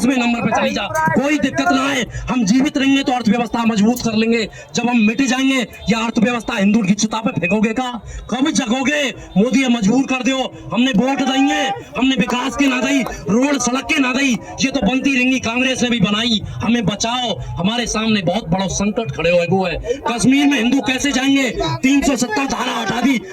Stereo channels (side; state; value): both; identical; correlation 1.00